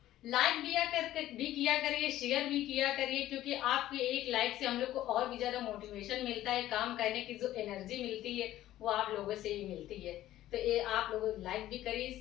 लाइक भी किया करिए, शेयर भी किया करिए, क्योंकि आपके एक लाइक से हम लोग को और भी ज्यादा मोटिवेशन मिलता है, काम करने की जो एनर्जी मिलती है वो आप लोगों से ही मिलती है। तो ये आप लोग लाइक भी करिए,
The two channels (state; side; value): quieter; right; 14.0 dB